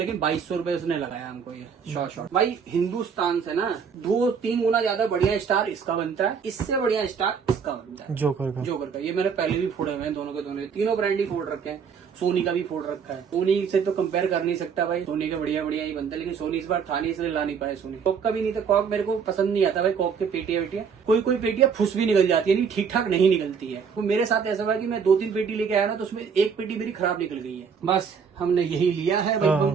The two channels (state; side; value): quieter; left; 6.4 dB